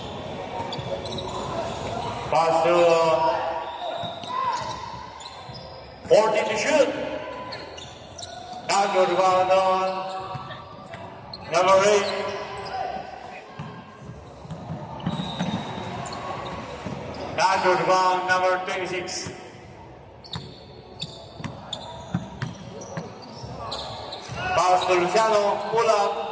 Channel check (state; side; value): identical; both; correlation 1.00